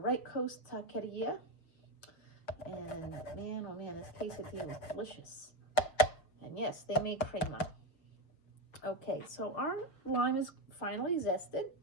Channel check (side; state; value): right; late; 6.5 ms